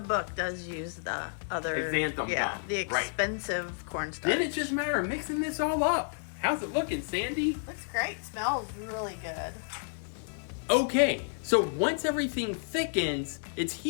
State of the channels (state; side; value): silent; right; digital silence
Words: book does use the other xanthan gum. the expensive cornstarch. Then it's just a matter of mixing this all up. How's it looking, Sandy? Looks great. Smells really good. Okay, so once everything thickens, it's